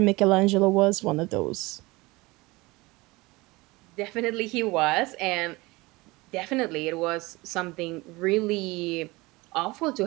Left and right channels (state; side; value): quieter; left; 22.5 dB